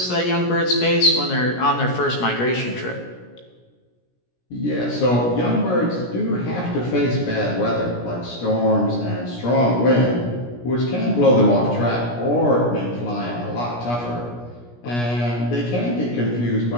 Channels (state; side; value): late; right; 17 ms